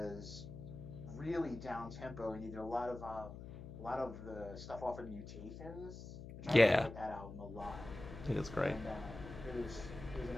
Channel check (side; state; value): left; noise; hum, 11 dB below the sound